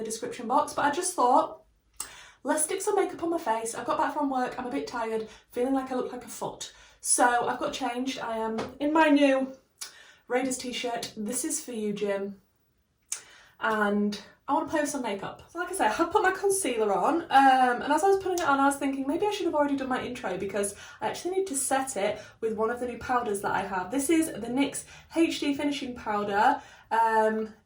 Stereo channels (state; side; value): identical; both; correlation 1.00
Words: description box, but I just thought, let's stick some makeup on my face. I've got back from work, I'm a bit tired, feeling like I look like a foot. So I've got changed. I am in my new Raiders t-shirt. This is for you, Jim. And I want to play with some makeup. So like I say, I have put my concealer on, and as I was putting it on, I was thinking maybe I should have already done my intro because I actually need to set it with one of the new powders that I have. This is the NYX HD Finishing Powder, and